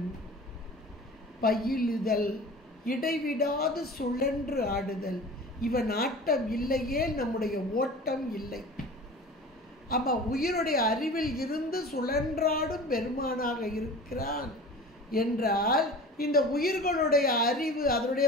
பயிலுதல், இடைவிடாது சுழன்று ஆடுதல். இவன் ஆட்டம் இல்லையே நம்முடைய ஓட்டம் இல்லை. அப்ப உயிருடைய அறிவில் இருந்து சுழன்றாடும் பெருமானாக இருக்கிறான் என்றால், இந்த உயிர்களுடைய அறிவு,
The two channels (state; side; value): normal; both; correlation 0.38